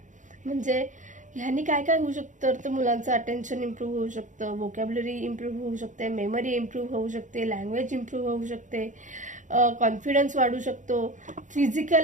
म्हणजे ह्यानी काय काय होऊ शकतं तर मुलांचं अटेन्शन इम्प्रूव्ह होऊ शकतं, व्होकॅब्युलरी इम्प्रूव्ह होऊ शकते, मेमरी इम्प्रूव्ह होऊ शकते, लँग्वेज इम्प्रूव्ह होऊ शकते, कॉन्फिडन्स वाढू शकतो,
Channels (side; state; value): left; late; 0.36 ms